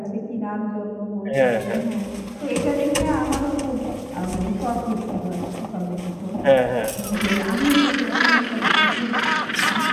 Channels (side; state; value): both; identical; correlation 1.00